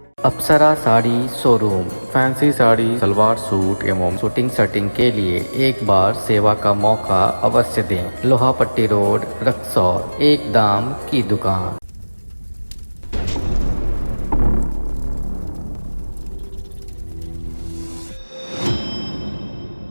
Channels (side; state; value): both; inverted; correlation -1.00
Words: Apsara sari showroom. Fancy sari, salwar suit एवं शूटिंग सेटिंग के लिए एक बार सेवा का मौका अवश्य दें। लोहापट्टी रोड, रक्सौल। एक दाम की दुकान।